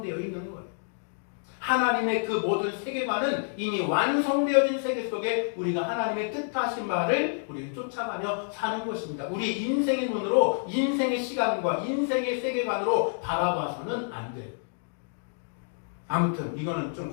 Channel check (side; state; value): right; silent; digital silence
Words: 있는 거예요. 하나님의 그 모든 세계관은 이미 완성되어진 세계 속에 우리가 하나님의 뜻하신 말을 우리는 쫓아가며 사는 것입니다. 우리 인생의 눈으로 인생의 시간과 인생의 세계관으로 바라봐서는 안 돼요. 아무튼 이거는 좀